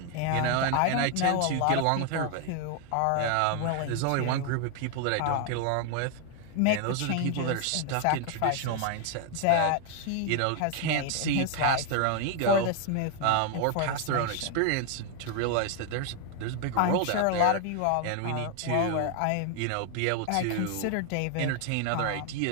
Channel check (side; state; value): both; different; correlation 0.00